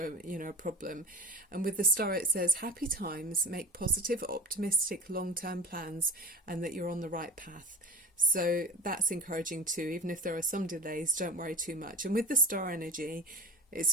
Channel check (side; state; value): both; normal; correlation 0.34